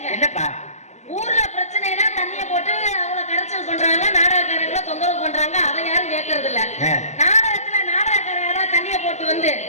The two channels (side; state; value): right; late; 0.33 ms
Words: என்னப்பா? ஊர்ல பிரச்சனைனா தண்ணிய போட்டு அவங்கள கரைச்சல் பண்றாங்க, நாடகக்காரங்களை தொந்தரவு பண்றாங்க. அதை யாரும் கேட்கறது இல்ல. நாடகத்துல நாடகக்காரங்க தண்ணிய போட்டு வந்து